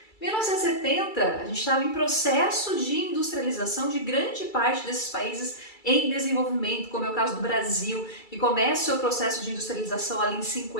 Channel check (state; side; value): late; right; 2.3 ms